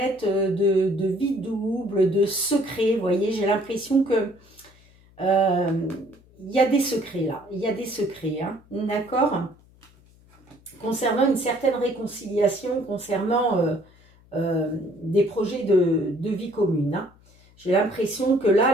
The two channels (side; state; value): left; noise; hum, 28 dB below the sound